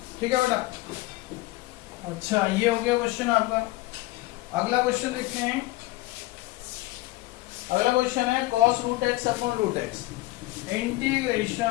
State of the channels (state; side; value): quieter; right; 19.8 dB